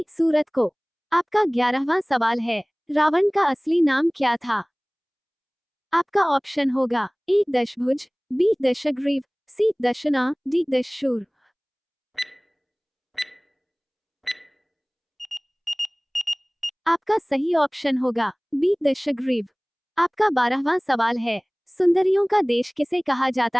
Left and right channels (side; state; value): both; identical; correlation 1.00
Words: सूरत को। आपका 11वां सवाल है, रावण का असली नाम क्या था? आपका ऑप्शन होगा ए दशभुज, बी दशग्रीव, सी दशना, डी दशशूर। आपका सही ऑप्शन होगा बी दशग्रीव। आपका 12वां सवाल है, सुंदरियों का देश किसे कहा